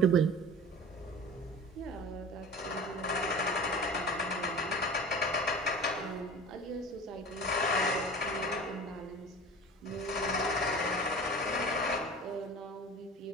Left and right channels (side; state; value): both; normal; correlation 0.38